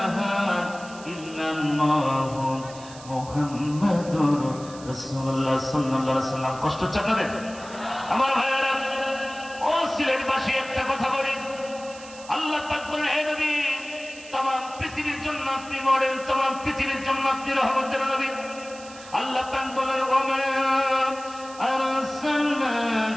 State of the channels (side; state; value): right; noise; hiss, 18 dB below the sound